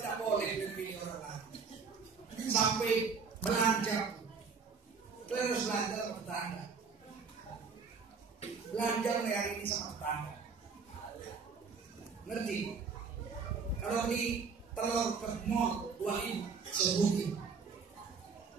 tidak boleh dipilih orang lain. Sampai belanja, terus belanja sama tetangga. Belanja hari ini sama tetangga. Ngerti? Kalau beli telur ke mall 2.000 sebutin.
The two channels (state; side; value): quieter; left; 5.3 dB